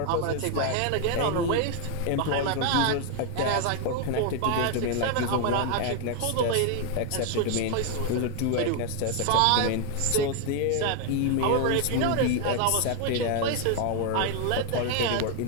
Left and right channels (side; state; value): both; different; correlation 0.00